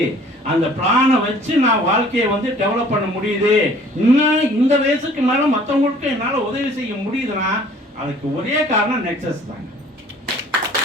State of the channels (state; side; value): normal; both; correlation 0.53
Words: அந்த பிளானை வச்சு நான் வாழ்க்கையை வந்து டெவலப் பண்ண முடியுது. இன்னும் இந்த வயசுக்கு மேல மற்றவங்களுக்கு என்னால உதவி செய்ய முடியுதுன்னா அதுக்கு ஒரே காரணம் நெக்ஸஸ் தாங்க.